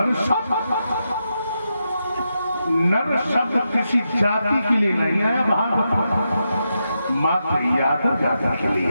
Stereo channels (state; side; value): inverted; both; correlation -0.86